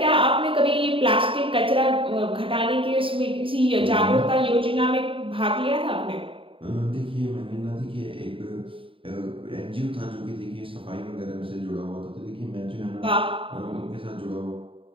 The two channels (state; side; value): late; left; 0.26 ms